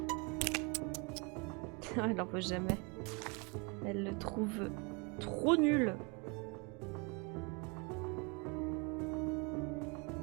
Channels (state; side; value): quieter; left; 30.8 dB